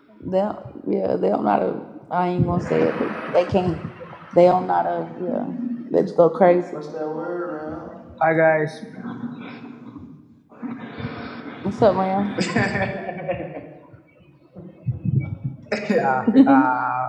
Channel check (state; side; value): identical; both; correlation 1.00